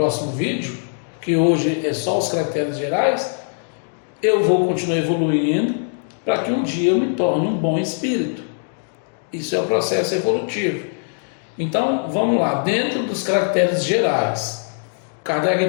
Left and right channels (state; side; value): silent; right; digital silence